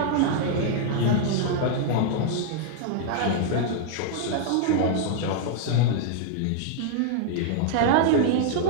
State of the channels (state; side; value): different; both; correlation -0.01